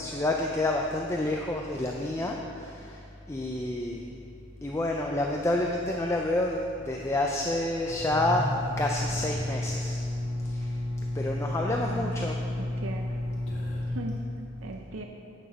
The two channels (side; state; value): both; normal; correlation 0.63